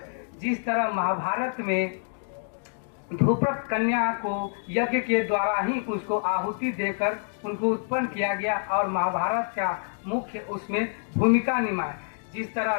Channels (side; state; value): right; silent; digital silence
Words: जिस तरह महाभारत में ध्रुपद कन्या को यज्ञ के द्वारा ही उसको आहुति देकर उनको उत्पन्न किया गया और महाभारत का मुख्य उसमें भूमिका निभाई। जिस तरह